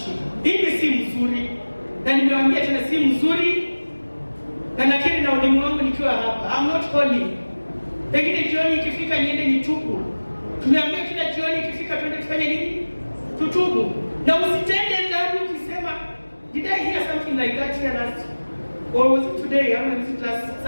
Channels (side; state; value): both; inverted; correlation -1.00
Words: Hii si mzuri. Na nimewaambia tena si mzuri. Na nakiri na ulimu wangu nikiwa hapa. I'm not holy. Lakini jioni ikifika niende nitubu. Tumeambia kila jioni ikifika twende tufanye nini? Tutubu. Na usitende dhambi ukisema, did I hear something like that here last? Or was it today? Or was it last